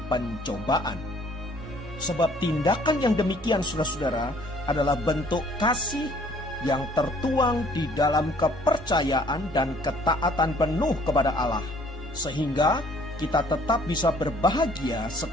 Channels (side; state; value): both; normal; correlation 0.59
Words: pencobaan. Sebab tindakan yang demikian saudara-saudara adalah bentuk kasih yang tertuang di dalam kepercayaan dan ketaatan penuh kepada Allah. Sehingga kita tetap bisa berbahagia